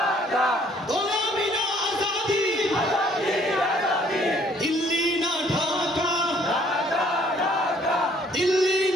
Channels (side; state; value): both; normal; correlation 0.61